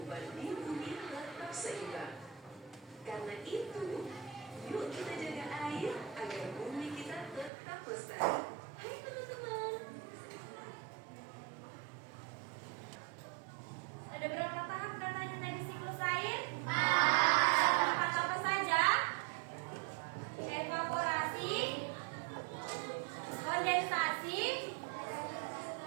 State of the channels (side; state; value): left; drops out; at 7.5 s